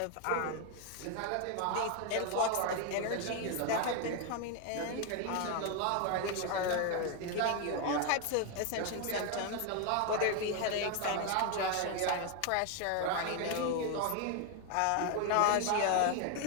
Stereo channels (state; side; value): different; both; correlation 0.01